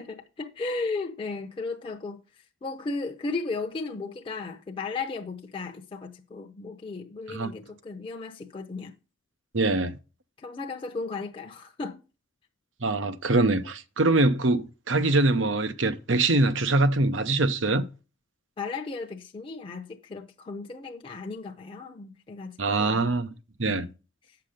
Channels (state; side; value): normal; both; correlation 0.39